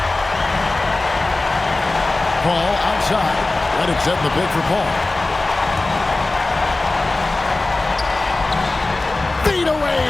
Paul outside. Reddick setting the pick for Paul. Feet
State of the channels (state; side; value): quieter; right; 3.1 dB